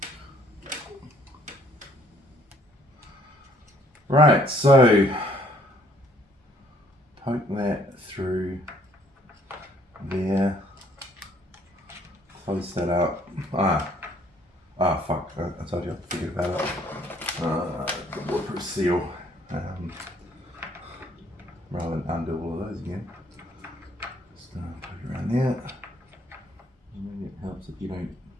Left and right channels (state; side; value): normal; both; correlation 0.63